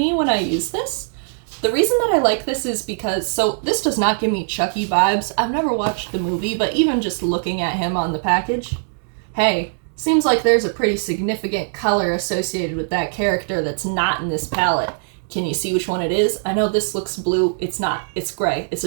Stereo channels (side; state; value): left; silent; 65 dB below the other